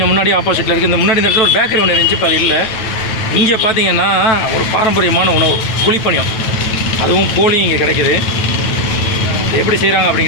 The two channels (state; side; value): late; right; 9.1 ms